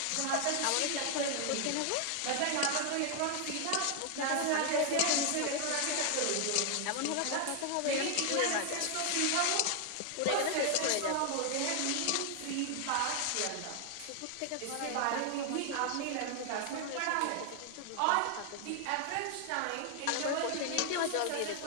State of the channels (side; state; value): both; different; correlation 0.00